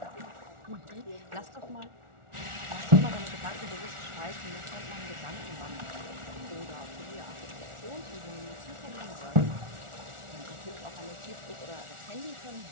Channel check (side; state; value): left; late; 1.4 ms